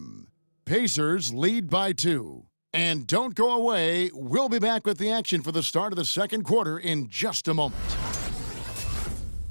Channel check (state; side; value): inverted; both; correlation -1.00